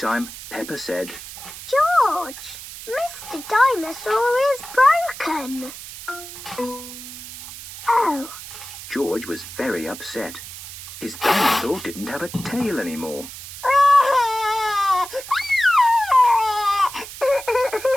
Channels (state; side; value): noise; right; hiss, 13 dB below the sound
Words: Peppa said, George, Mr. Dinosaur is broken. Oh. George was very upset. His dinosaur didn't have a tail anymore.